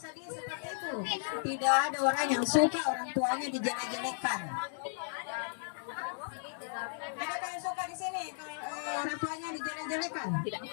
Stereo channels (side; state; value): right; silent; digital silence